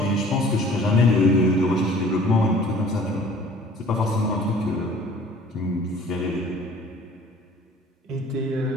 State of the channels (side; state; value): both; normal; correlation 0.50